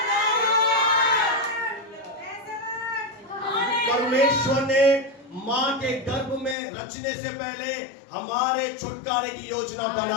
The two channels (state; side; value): drops out; right; at 6.6 s